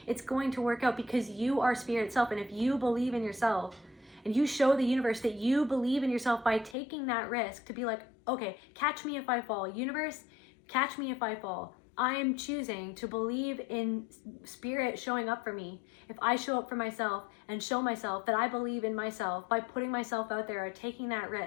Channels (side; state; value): right; drops out; at 6.8 s